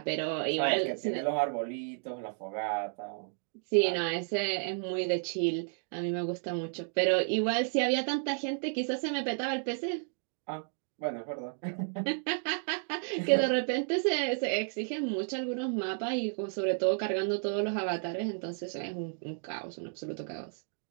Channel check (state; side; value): silent; left; 56 dB below the other